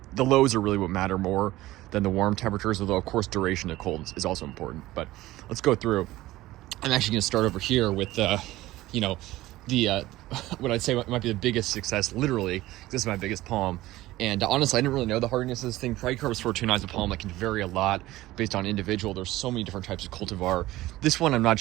the lows are really what matter more than the warm temperatures, although of course duration of cold is also important. But let's go through. I'm actually going to start over here with the what I'd say might be the biggest success, literally, because this is my biggest palm. And honestly, I didn't really know the hardiness of this thing. Trichorbis fortunae is a palm that can vary a lot based on individual. There's so many different types of cultivar. This one, I'm not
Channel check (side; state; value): left; quieter; 17.0 dB